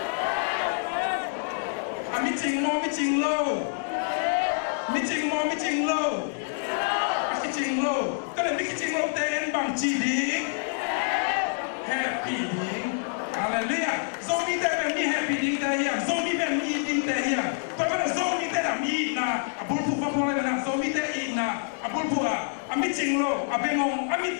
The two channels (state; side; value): silent; right; digital silence